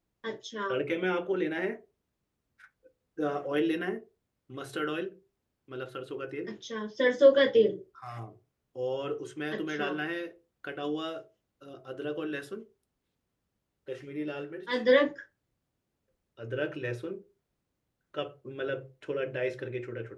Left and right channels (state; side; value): identical; both; correlation 1.00